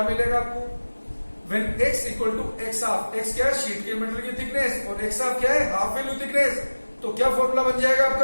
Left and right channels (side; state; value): both; inverted; correlation -1.00